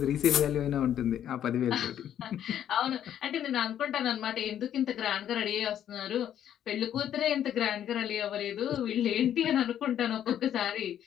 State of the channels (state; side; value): quieter; right; 10.3 dB